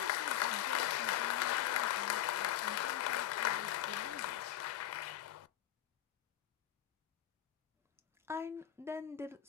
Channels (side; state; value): right; quieter; 12.4 dB